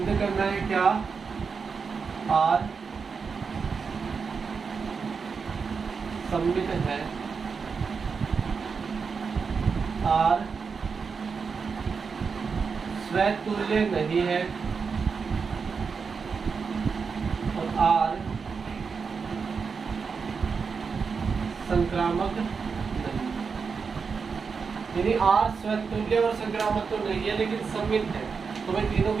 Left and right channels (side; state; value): left; quieter; 5.4 dB